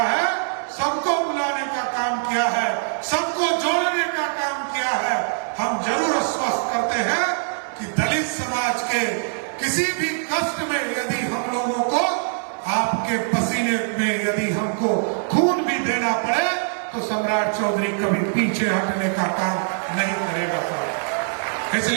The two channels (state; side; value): silent; left; 64 dB below the other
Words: है, सबको बुलाने का काम किया है, सबको जोड़ने का काम किया है, हम जरूर आश्वस्त करते हैं कि दलित समाज के किसी भी कष्ट में यदि हम लोगों को आपके पसीने में यदि हमको खून भी देना पड़े तो सम्राट चौधरी कभी पीछे हटने का काम नहीं करेगा।